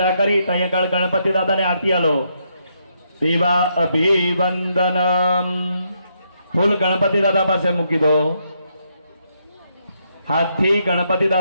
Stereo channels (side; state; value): both; inverted; correlation -0.77